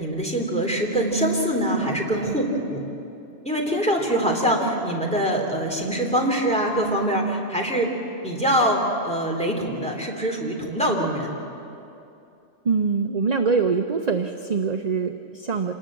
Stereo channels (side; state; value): both; normal; correlation -0.04